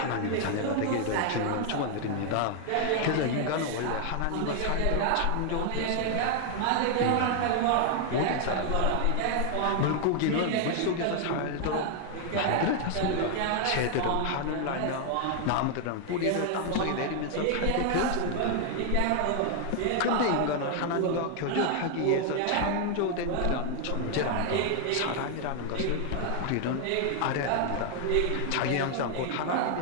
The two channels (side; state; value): both; different; correlation 0.00